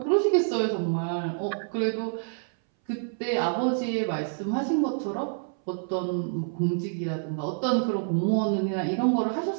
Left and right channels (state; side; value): silent; left; 60 dB below the other